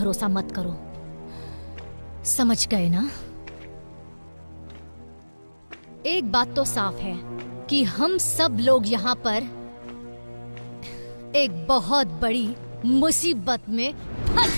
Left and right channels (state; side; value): inverted; both; correlation -1.00